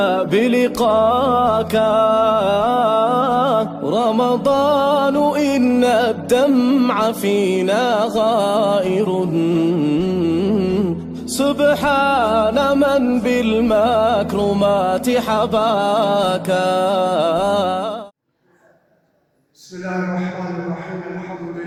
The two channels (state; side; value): identical; both; correlation 1.00